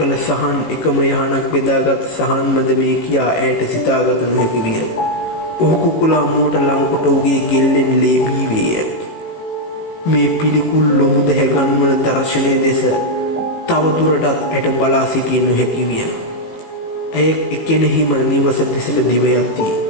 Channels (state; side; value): late; right; 18 ms